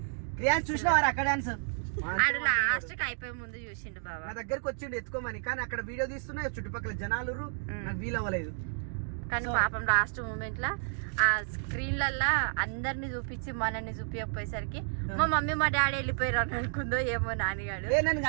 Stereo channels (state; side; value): silent; left; digital silence